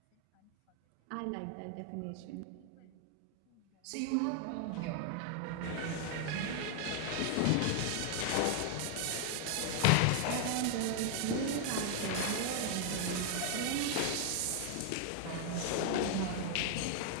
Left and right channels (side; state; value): both; different; correlation 0.00